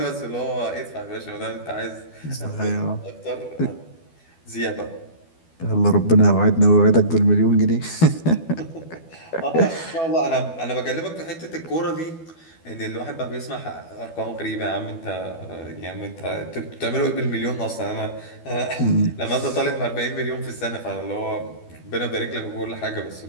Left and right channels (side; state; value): right; late; 12 ms